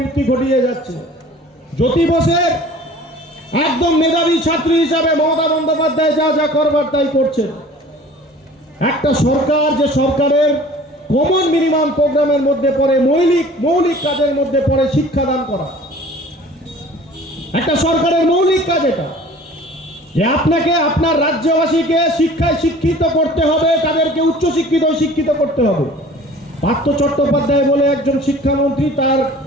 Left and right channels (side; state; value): both; normal; correlation 0.46